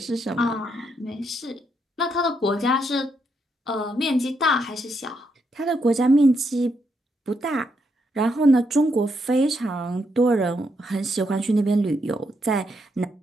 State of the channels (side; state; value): both; normal; correlation 0.78